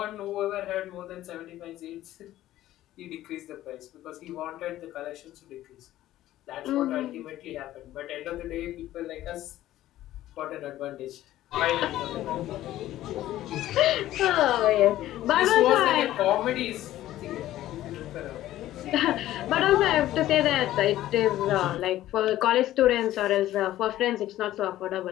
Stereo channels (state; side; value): quieter; right; 14.2 dB